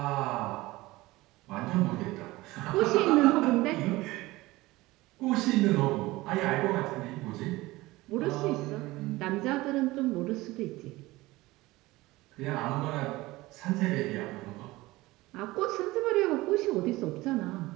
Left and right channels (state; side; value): quieter; left; 19.6 dB